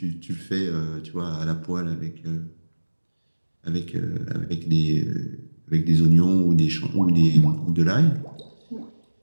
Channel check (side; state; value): both; inverted; correlation -1.00